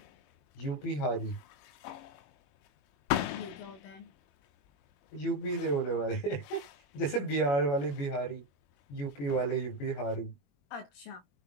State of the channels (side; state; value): right; late; 21 ms